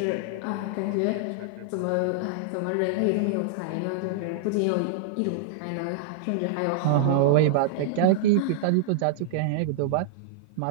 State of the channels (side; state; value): both; different; correlation -0.01